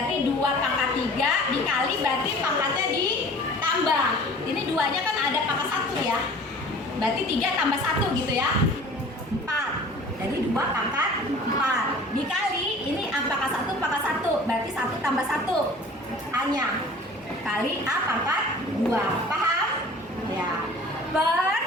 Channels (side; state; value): both; normal; correlation 0.45